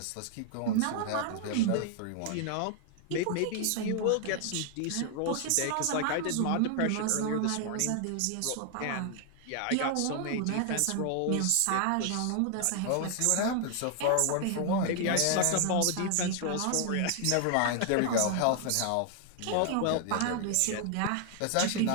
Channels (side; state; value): both; different; correlation 0.00